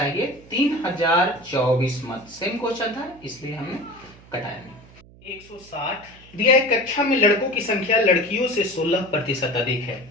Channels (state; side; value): noise; right; hum, 23 dB below the sound